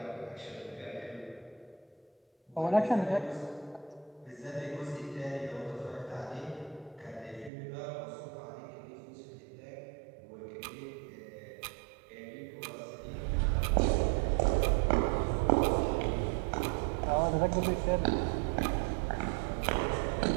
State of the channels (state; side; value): drops out; left; at 7.5 s